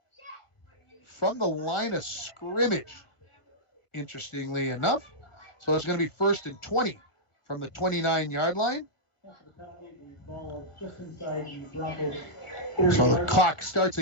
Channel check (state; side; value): late; right; 1.5 ms